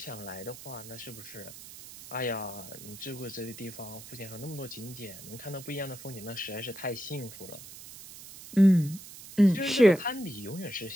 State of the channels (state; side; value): noise; right; hiss, 15 dB below the sound